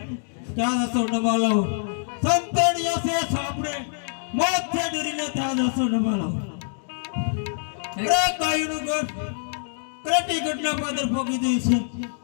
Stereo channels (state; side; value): silent; right; digital silence